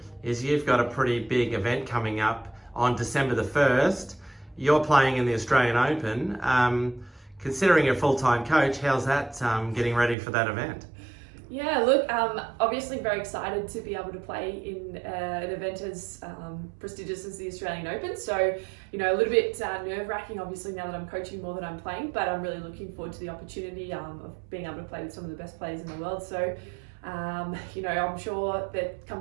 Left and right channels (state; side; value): drops out; left; at 10.2 s